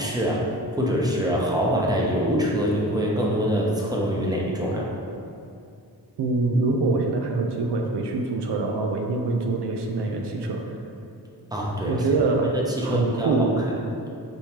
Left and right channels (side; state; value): both; normal; correlation 0.37